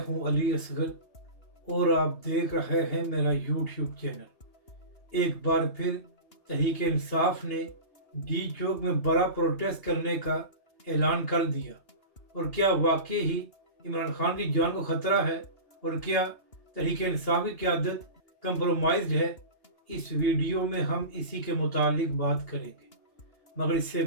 हूं अली असगर और आप देख रहे हैं मेरा यूट्यूब चैनल। एक बार फिर तहरीक इंसाफ ने डी चौक में बड़ा प्रोटेस्ट करने का ऐलान कर दिया। और क्या वाकई ही इमरान खान की जान को ख़तरा है और क्या तहरीक इंसाफ की क़यादत कंप्रोमाइज्ड है? इस वीडियो में हम इसी के मुतालिक बात करेंगे। मगर इससे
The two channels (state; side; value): late; right; 2.8 ms